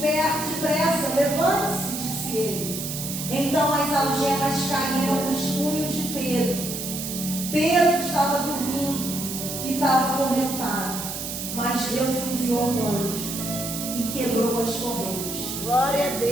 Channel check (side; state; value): right; noise; hiss, 6 dB below the sound